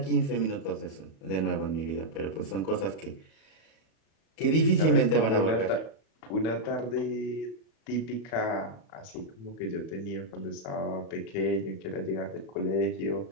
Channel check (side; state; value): right; late; 37 ms